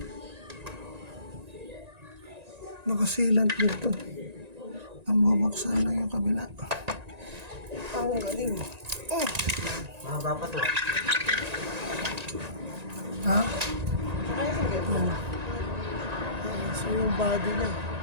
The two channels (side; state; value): left; late; 1.9 ms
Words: nakasilant dito. Ang mabuksan lang yung kabila. Ang galing. Mahaba pa to. Ha? Yan. So yung body niya,